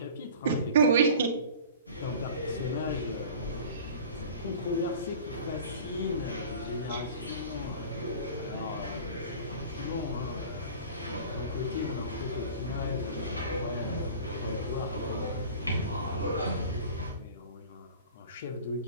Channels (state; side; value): inverted; both; correlation -0.41